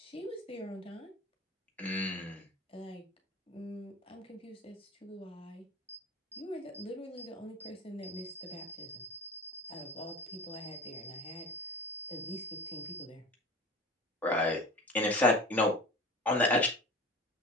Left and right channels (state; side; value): normal; both; correlation 0.37